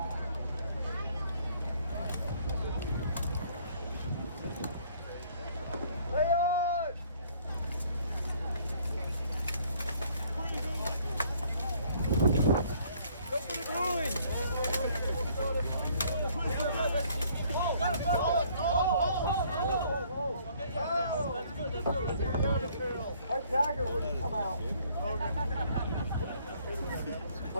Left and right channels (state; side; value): inverted; both; correlation -0.61